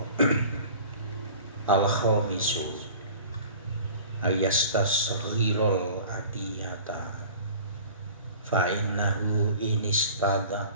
Al-khamisu ayastasghirul atiyata fa innahu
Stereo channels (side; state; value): both; inverted; correlation -0.43